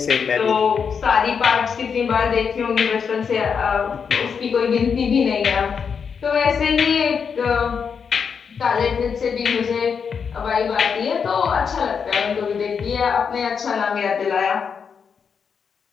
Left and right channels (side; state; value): right; quieter; 6.4 dB